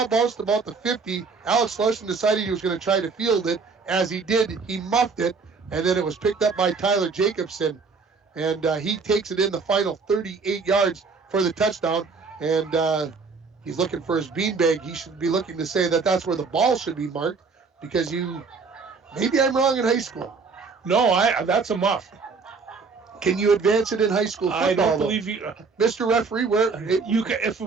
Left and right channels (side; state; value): left; quieter; 4.7 dB